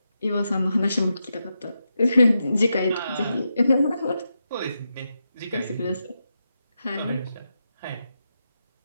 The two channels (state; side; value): inverted; both; correlation -0.86